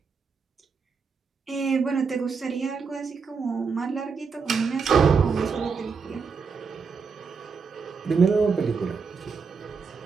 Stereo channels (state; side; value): quieter; left; 5.4 dB